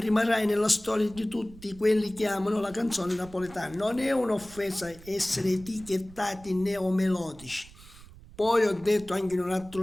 nella storia di tutti quelli che amano la canzone napoletana. Non è un'offesa essere etichettati neomelodici. Poi ho detto anche in un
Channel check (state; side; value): noise; right; rumble, 20 dB below the sound